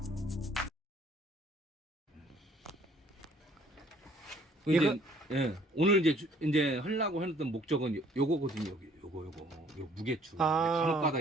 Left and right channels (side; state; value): both; normal; correlation 0.59